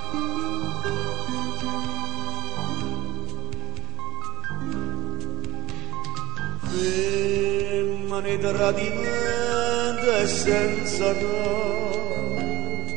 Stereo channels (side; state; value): left; quieter; 18.7 dB